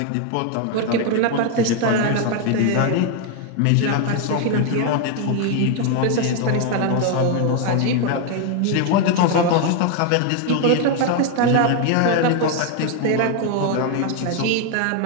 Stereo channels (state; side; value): different; both; correlation 0.01